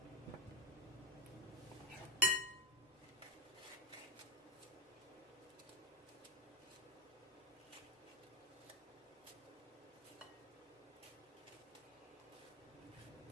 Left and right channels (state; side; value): normal; both; correlation 0.04